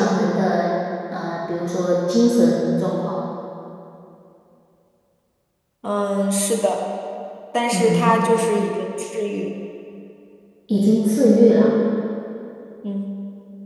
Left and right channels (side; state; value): both; identical; correlation 1.00